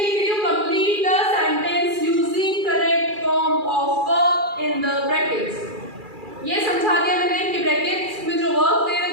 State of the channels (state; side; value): late; left; 2.4 ms